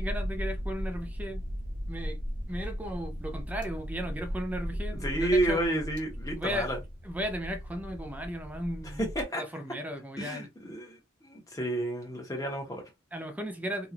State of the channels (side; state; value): both; normal; correlation 0.71